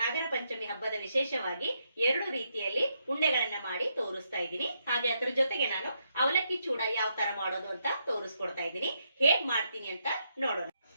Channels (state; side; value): inverted; both; correlation -0.79